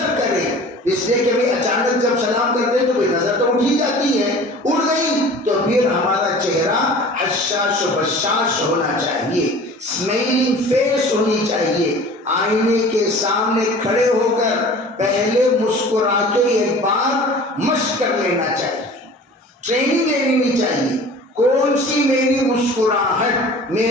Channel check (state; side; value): normal; both; correlation 0.43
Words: کرے، اس لیے کہ بھئی اچانک جب سلام کرتے تو بھئی نظر تو اٹھی جاتی ہے، اڑ گئی تو پھر ہمارا چہرہ حشاش و بشاش ہونا چاہیے، اسمائلنگ فیس ہونی چاہیے۔ آئینے کے سامنے کھڑے ہو کر پہلے مسکرا کے ایک بار مشق کر لینا چاہیے، ٹریننگ لینی چاہیے، کون سی میری مسکراہٹ